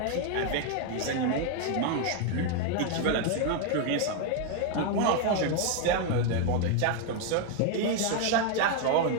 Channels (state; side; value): different; both; correlation 0.01